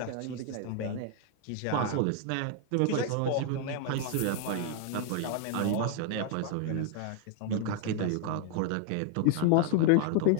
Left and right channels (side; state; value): both; different; correlation 0.00